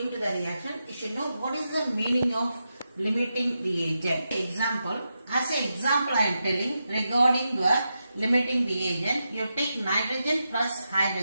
to the reaction, you should know what is the meaning of limiting reagent. Example, as an example I am telling regarding the limiting reagent, you take nitrogen plus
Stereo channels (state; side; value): inverted; both; correlation -0.88